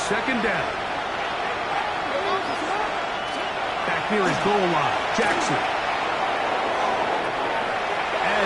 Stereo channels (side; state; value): both; identical; correlation 1.00